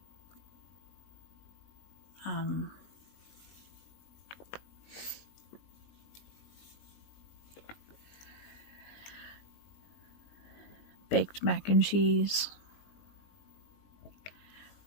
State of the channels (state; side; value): late; right; 20 ms